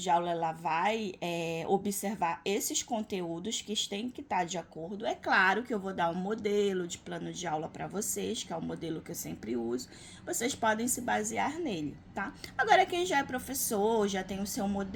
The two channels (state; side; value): identical; both; correlation 1.00